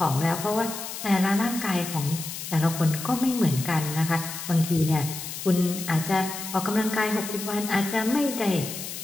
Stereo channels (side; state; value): left; noise; hiss, 8 dB below the sound